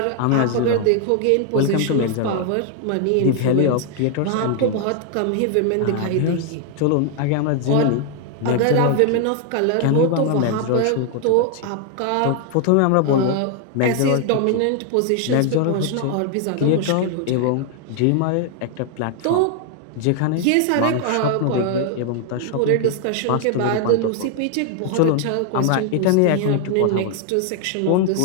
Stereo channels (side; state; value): both; different; correlation 0.00